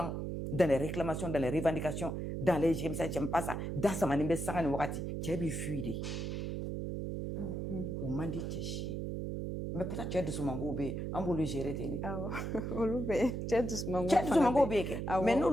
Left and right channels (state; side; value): noise; right; hum, 3 dB below the sound